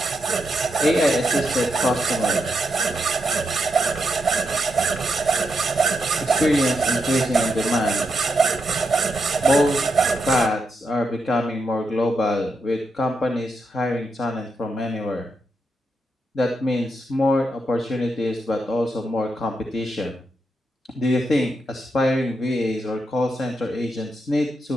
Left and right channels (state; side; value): normal; both; correlation 0.82